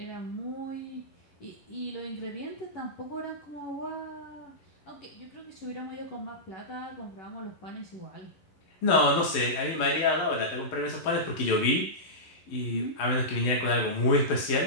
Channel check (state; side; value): late; right; 11 ms